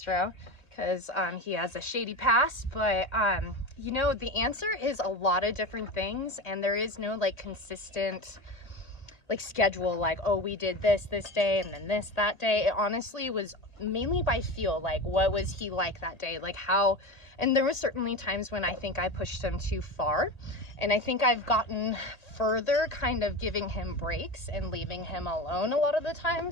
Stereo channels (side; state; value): right; late; 1.8 ms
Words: because he has a shady past. But you know, the answer is a lot of different things, and there is no like consistent like schedule, like, oh, we did this day and then this that day. It honestly was mainly by feel, like what was he like that day, like how. And there was certainly times when I think I pushed him too far, and I think I've gotten further kind of giving him breaks and leaving him alone a lot of the